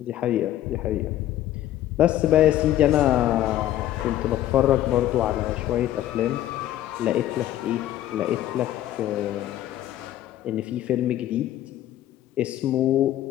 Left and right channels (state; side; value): quieter; right; 13.0 dB